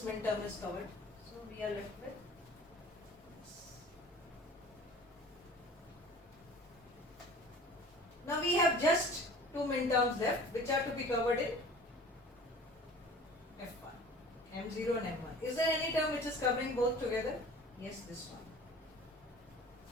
min term is covered. So we are left with this. Now we have just two min terms left, which are to be covered in F1, M0 and M1. Is there any term which is covering both together? Yes, this one.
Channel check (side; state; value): both; normal; correlation 0.44